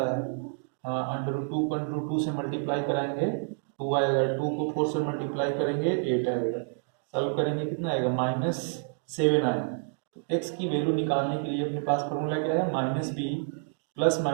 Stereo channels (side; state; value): left; silent; digital silence